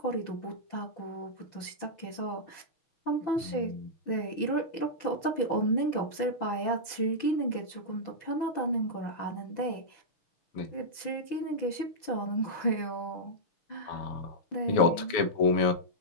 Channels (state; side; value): late; right; 6.0 ms